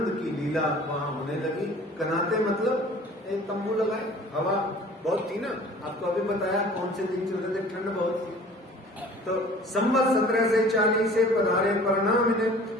की लीला वहां होने लगी। कनाते मतलब एक तंबू लगाए, हवा बहुत थी ना, आपको अभी बताया कौन से दिन चल रहे थे, ठंड बहुत थी। तो संवत 1740 से पधारे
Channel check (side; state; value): both; normal; correlation 0.47